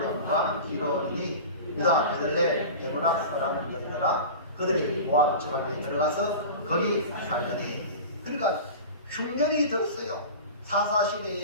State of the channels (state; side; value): inverted; both; correlation -0.33